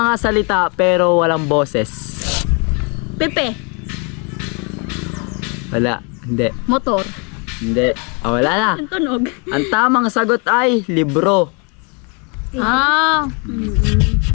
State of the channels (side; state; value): right; quieter; 34.3 dB